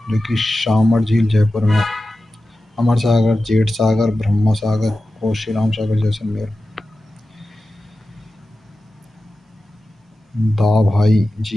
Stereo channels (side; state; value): both; normal; correlation 0.93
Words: जो कि शामर झील जयपुर में। अमर सागर, जेठ सागर, ब्रह्मा सागर, कोशीराम सागर जैसलमेर। दा भाई